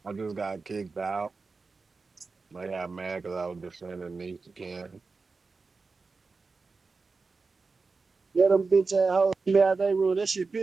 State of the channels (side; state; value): left; quieter; 4.2 dB